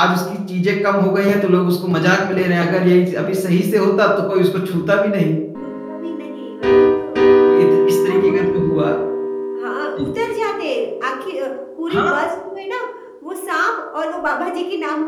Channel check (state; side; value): identical; both; correlation 1.00